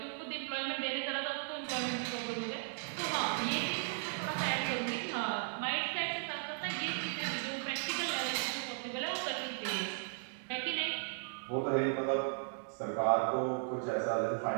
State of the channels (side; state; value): left; silent; 54 dB below the other